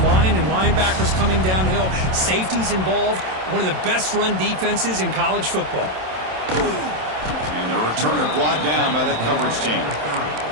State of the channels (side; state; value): left; late; 27 ms